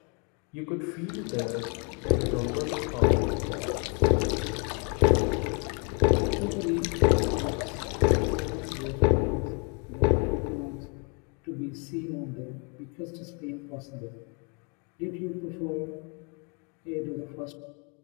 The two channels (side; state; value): right; quieter; 35.3 dB